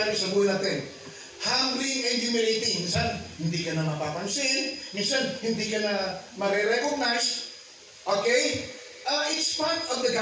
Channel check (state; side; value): identical; both; correlation 1.00